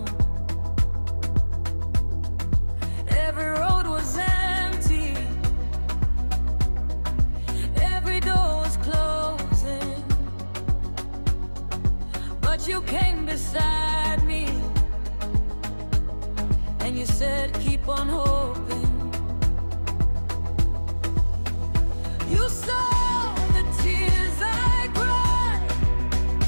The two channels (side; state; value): both; inverted; correlation -1.00